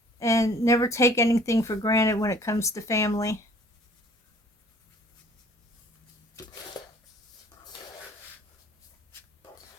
And never take anything for granted when it comes to family.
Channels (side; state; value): both; normal; correlation 0.54